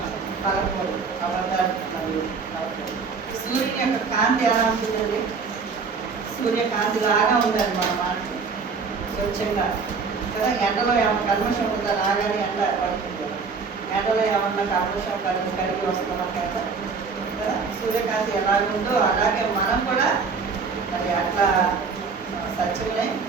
పలకూడదు. అబద్ధాలు మరియు సూర్యుని యొక్క కాంతి ఎలా ఉంటుందండి? సూర్యకాంతి లాగా ఉండాలి మన మాటలు, స్వచ్ఛంగా కదా. ఎండలో ఏమన్నా కల్మషం ఉందా? రాగానే ఎండ పడుతుంది కదా, ఎండలో ఏమన్నా కల్మషం కలిగి వస్తుంది మనకి ఎండ కదా. సూర్యకాంతి ఎలాగుందో అలాగే మనం కూడా మరి అట్లా సత్యమనే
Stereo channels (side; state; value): left; quieter; 5.1 dB